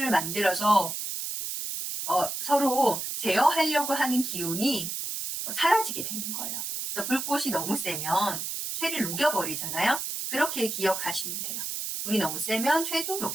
만들어서 서로 제어하려고 하는 기운이 사라지게 되는 거예요. 그래서 불꽃이 너무 세면 쇠를 녹여버리잖아요. 그렇게 기억하시면 돼요. 불이 너무 세면 쇠도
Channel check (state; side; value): noise; right; hiss, 4 dB below the sound